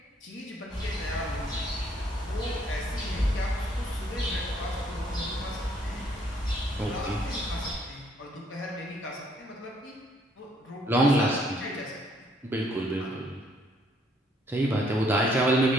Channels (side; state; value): both; normal; correlation 0.67